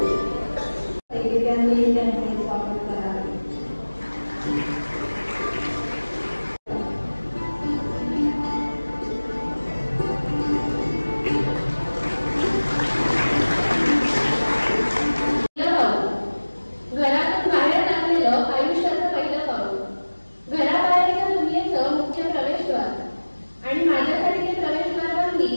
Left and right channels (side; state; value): both; inverted; correlation -1.00